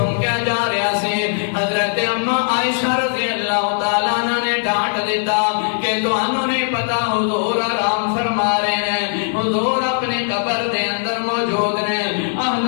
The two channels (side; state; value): right; silent; 67 dB below the other